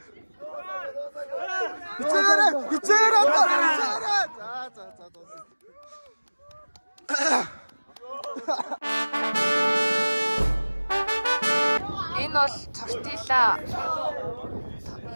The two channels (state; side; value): inverted; both; correlation -1.00